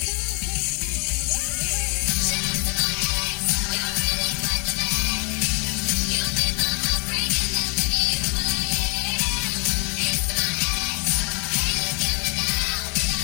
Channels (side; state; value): right; quieter; 35.1 dB